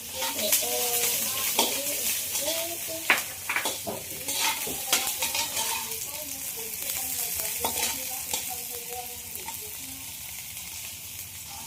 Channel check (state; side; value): identical; both; correlation 1.00